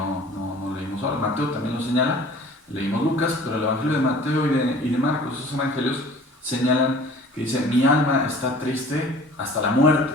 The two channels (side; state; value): both; normal; correlation 0.47